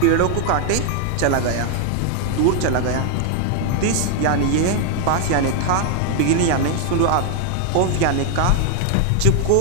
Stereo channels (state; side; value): different; both; correlation 0.00